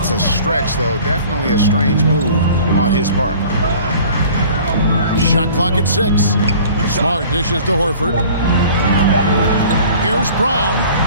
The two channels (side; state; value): both; inverted; correlation -0.47